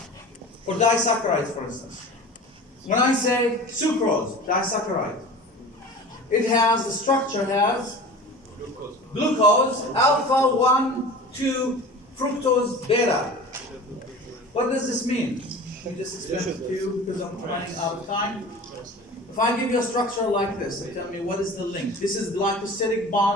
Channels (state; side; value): normal; both; correlation 0.37